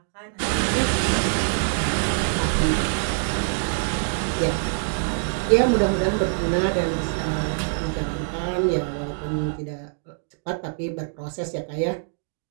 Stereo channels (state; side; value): silent; left; 62 dB below the other